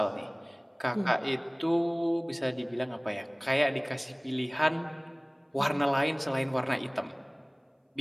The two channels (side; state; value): both; identical; correlation 1.00